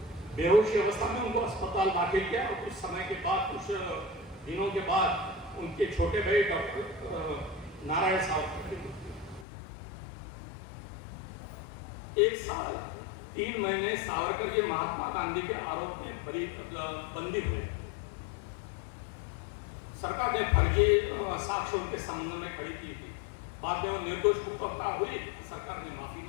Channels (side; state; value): right; drops out; at 9.5 s